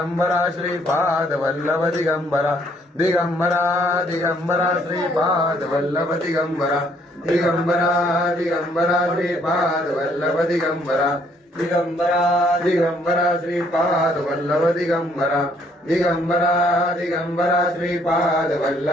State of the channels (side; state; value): both; normal; correlation 0.66